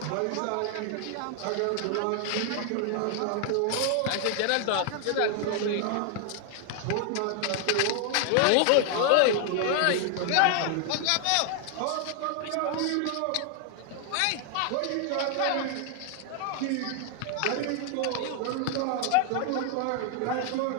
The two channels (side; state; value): both; different; correlation 0.00